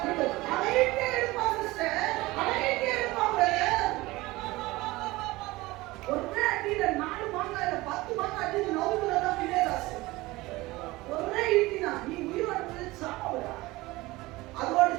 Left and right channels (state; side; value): quieter; left; 20.2 dB